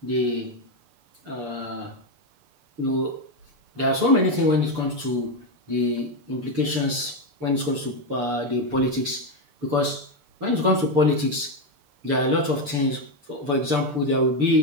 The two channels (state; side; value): late; left; 6.8 ms